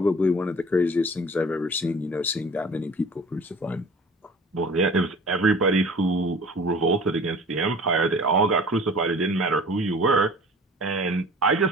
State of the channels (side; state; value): both; normal; correlation 0.44